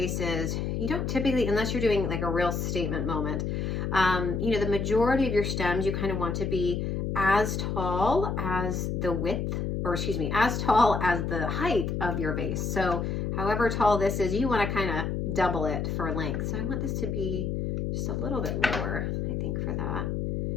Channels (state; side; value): noise; left; hum, 1 dB below the sound